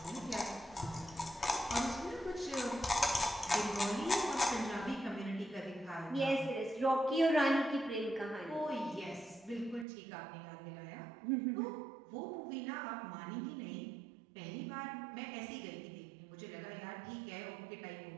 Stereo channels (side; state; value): left; drops out; at 9.9 s